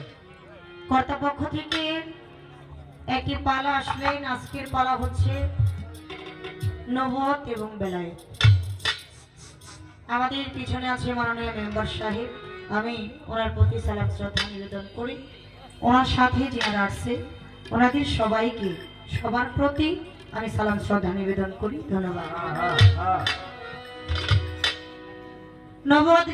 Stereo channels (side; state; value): both; identical; correlation 1.00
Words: কর্তাপক্ষ থেকে একটি পালা আসলেন। আজকের পালা হচ্ছে নবুয়ত এবং বেলায়েত। আমাদের পিছনে আছে মাননীয় মেম্বার সাহেব, আমি ওনার প্রতি সালাম শ্রদ্ধা নিবেদন করি। ওনার সাথে যারা আসছে ওনাদের সবাইকে সবার প্রতি আমি সালাম শ্রদ্ধা নিবেদন করি। ধন্যবাদ। নবুয়ত